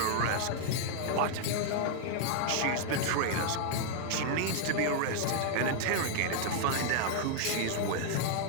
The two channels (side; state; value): both; different; correlation 0.00